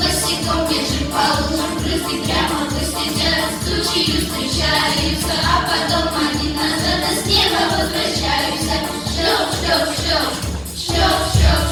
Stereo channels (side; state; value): both; identical; correlation 1.00